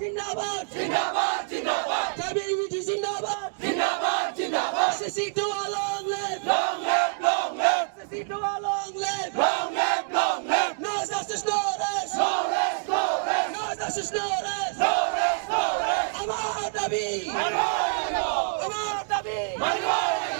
জিন্দাবাদ জিন্দাবাদ জিন্দাবাদ ট্রাইবেল ইউনিটি জিন্দাবাদ জিন্দাবাদ জিন্দাবাদ সিসি2 long live long live long live সিসি2 long live long live long live no justice no rest no rest no rest no justice no rest no rest no rest আমার দাবি আমার দাবি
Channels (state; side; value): silent; left; digital silence